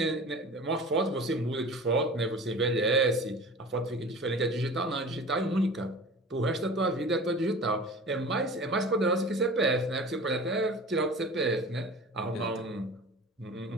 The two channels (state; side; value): normal; both; correlation 0.38